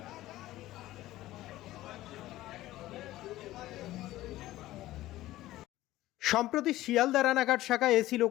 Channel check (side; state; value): right; quieter; 15.9 dB